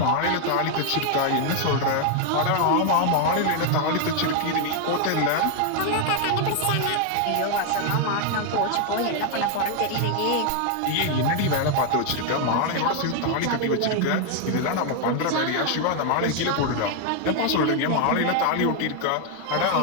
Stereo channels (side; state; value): both; different; correlation 0.00